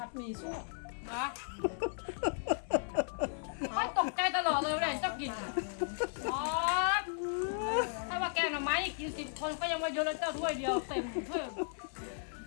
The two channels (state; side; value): silent; right; 54 dB below the other